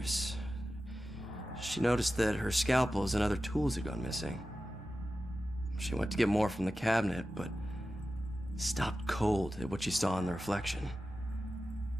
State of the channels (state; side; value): normal; both; correlation 0.94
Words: She noticed that her scalpels and other tools had gone missing. She went to get more from the cabinet, but stopped cold at what she saw in the reflection.